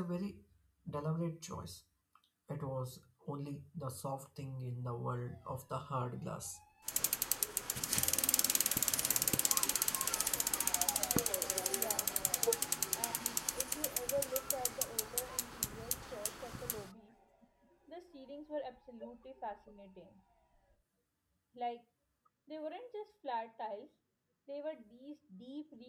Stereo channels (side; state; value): both; identical; correlation 1.00